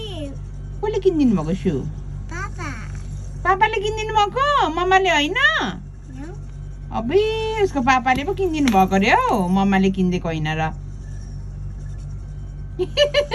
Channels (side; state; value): both; identical; correlation 1.00